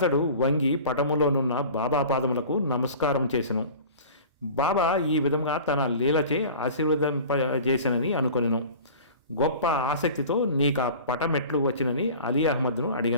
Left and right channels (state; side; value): inverted; both; correlation -0.40